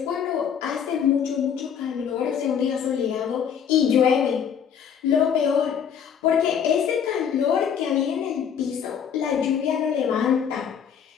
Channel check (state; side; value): quieter; right; 7.9 dB